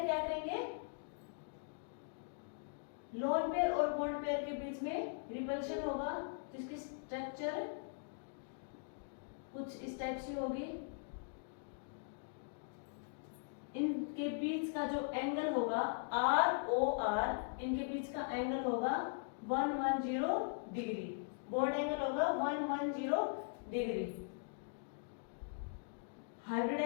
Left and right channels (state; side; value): silent; right; digital silence